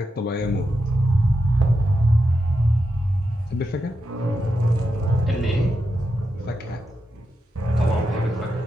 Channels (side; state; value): both; normal; correlation 0.87